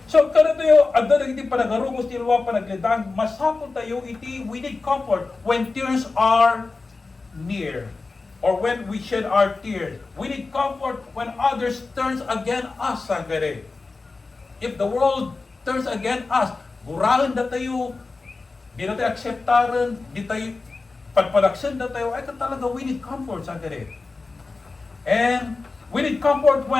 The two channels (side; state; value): right; quieter; 3.9 dB